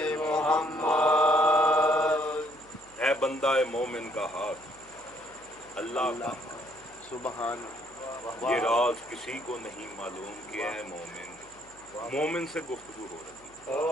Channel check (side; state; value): right; noise; hum, 27 dB below the sound